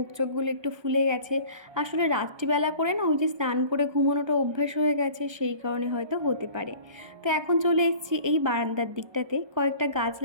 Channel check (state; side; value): late; left; 1.3 ms